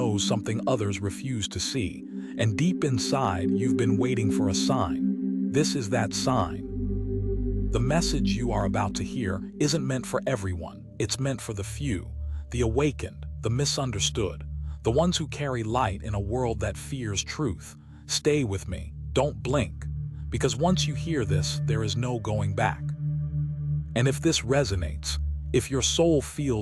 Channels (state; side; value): identical; both; correlation 1.00